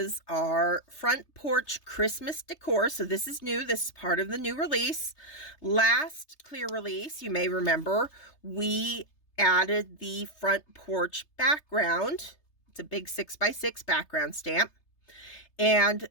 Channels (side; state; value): right; late; 3.3 ms